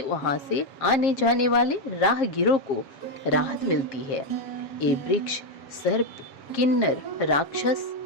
वहां से आने जाने वाले राहगीरों को राहत मिलती है। ये वृक्ष सर्प, किन्नर, राक्षस,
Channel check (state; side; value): late; right; 7.4 ms